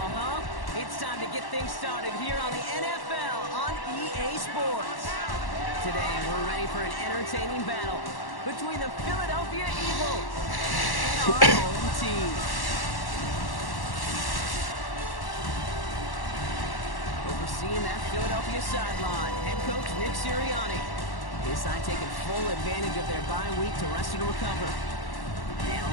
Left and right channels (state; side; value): late; right; 1.1 ms